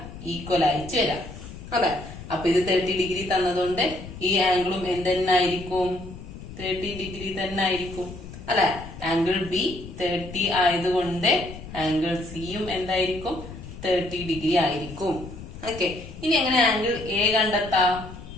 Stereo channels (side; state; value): left; noise; rumble, 13 dB below the sound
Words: ഈക്വൽ ആയിട്ട് വരിക അല്ലെ. അപ്പൊ ഇത് 30 ഡിഗ്രി തന്നതുകൊണ്ട് ഈ ആംഗിളും എന്തെന്നായിരിക്കും? 30 ഡിഗ്രി തന്നെ ആയിരിക്കും അല്ലെ. ആംഗിൾ ബി 30 ആയതുകൊണ്ട് ആംഗിൾ സിയും എന്തായിരിക്കും? 30 ഡിഗ്രി ആയിരിക്കും. ഓക്കെ, ഇനി എങ്ങനെ ആംഗിൾ എ കണ്ടെത്താം?